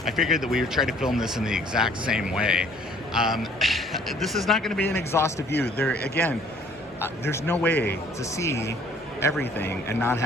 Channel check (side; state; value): both; normal; correlation 0.57